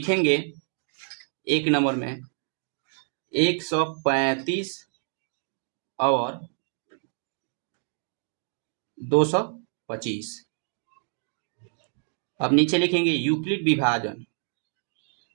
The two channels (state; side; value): silent; left; 60 dB below the other